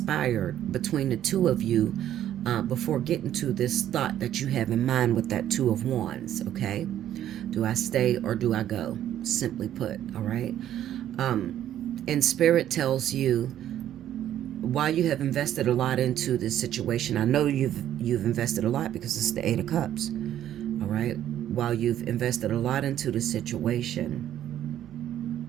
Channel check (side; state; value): left; quieter; 11.4 dB